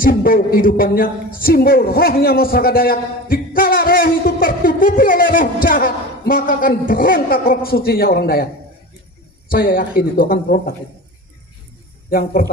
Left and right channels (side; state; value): both; normal; correlation 0.32